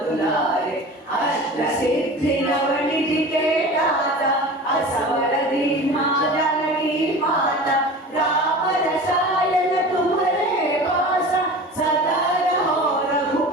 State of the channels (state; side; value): normal; both; correlation 0.36